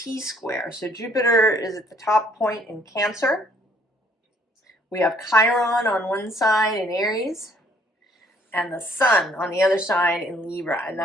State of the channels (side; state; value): both; normal; correlation 0.63